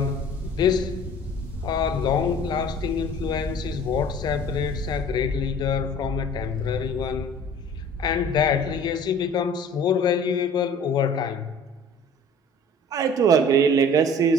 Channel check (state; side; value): normal; both; correlation 0.47